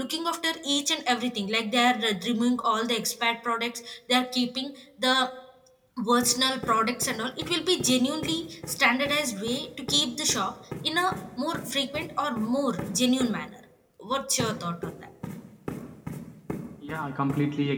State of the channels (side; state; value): both; identical; correlation 1.00